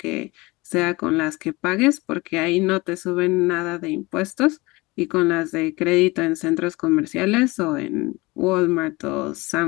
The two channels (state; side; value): quieter; right; 22.9 dB